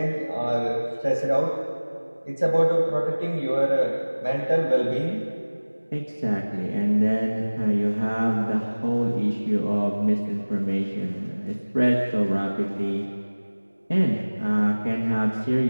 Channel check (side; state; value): both; inverted; correlation -1.00